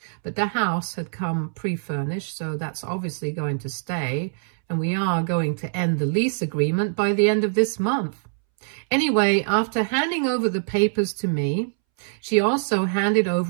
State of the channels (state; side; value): silent; left; 63 dB below the other